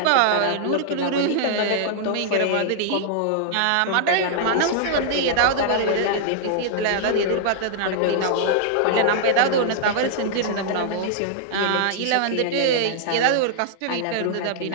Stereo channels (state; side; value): different; both; correlation -0.01